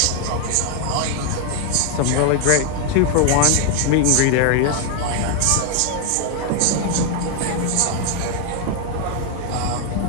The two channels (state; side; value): different; both; correlation 0.01